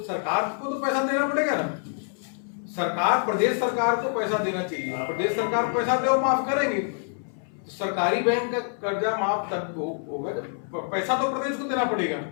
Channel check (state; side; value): silent; right; 61 dB below the other